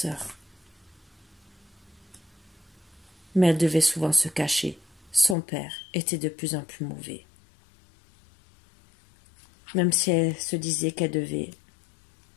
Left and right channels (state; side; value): drops out; right; at 5.4 s